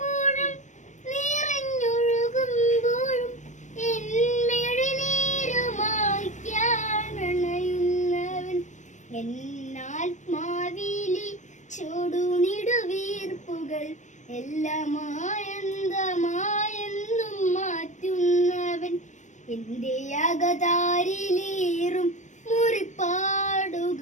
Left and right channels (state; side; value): late; right; 0.35 ms